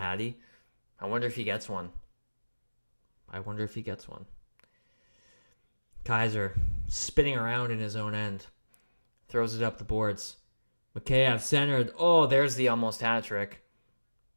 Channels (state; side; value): inverted; both; correlation -1.00